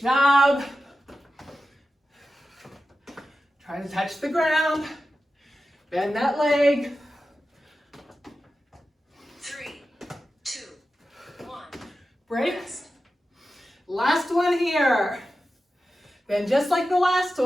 job. Try to touch the ground. Bend that leg. 3, 2, 1. Break. Rest. Last one here. Then just like the last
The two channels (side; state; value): both; normal; correlation 0.92